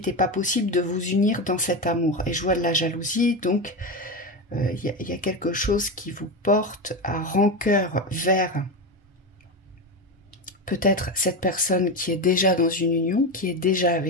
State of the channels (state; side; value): normal; both; correlation 0.17